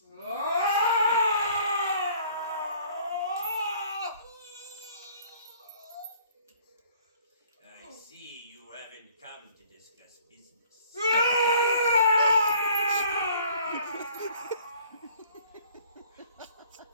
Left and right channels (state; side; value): inverted; both; correlation -0.56